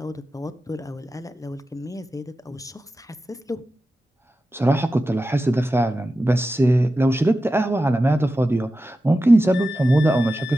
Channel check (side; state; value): both; normal; correlation 0.93